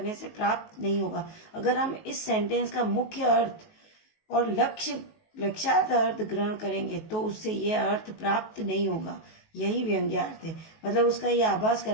से प्राप्त नहीं होगा। अगर हम इस सेंटेंस का मुख्य अर्थ और लक्ष्यार्थ अर्थ ग्रहण करेंगे तो उससे यह अर्थ प्राप्त नहीं होगा। यही व्यंग्यार्थ है, मतलब उसका यह आभास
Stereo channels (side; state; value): right; late; 19 ms